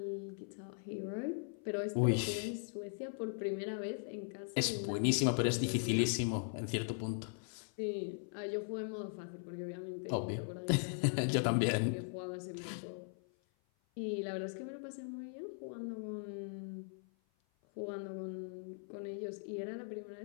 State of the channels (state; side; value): silent; right; 52 dB below the other